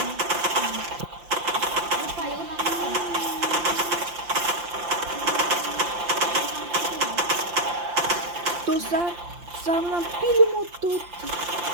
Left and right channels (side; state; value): left; late; 5.8 ms